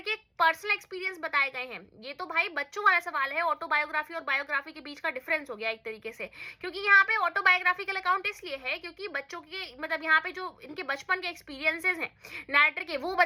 के पर्सनल एक्सपीरियंस बताए गए हैं। ये तो भाई बच्चों वाला सवाल है, ऑटोबायोग्राफी और बायोग्राफी के बीच का डिफरेंस हो गया एक तरीके से, क्योंकि यहाँ पे ऑटोबायोग्राफिकल अकाउंट इसलिए है क्योंकि बच्चों के मतलब यहाँ पे जो इनके बचपन के एक्सपीरियंसेस हैं नैरेटर के वो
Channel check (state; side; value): identical; both; correlation 1.00